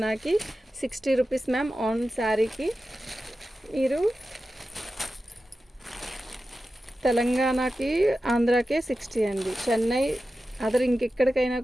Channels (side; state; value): both; normal; correlation 0.93